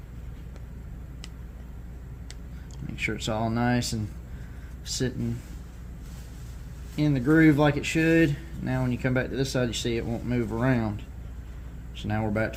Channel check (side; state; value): both; identical; correlation 1.00